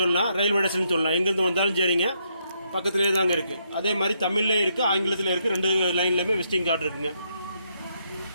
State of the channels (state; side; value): inverted; both; correlation -0.76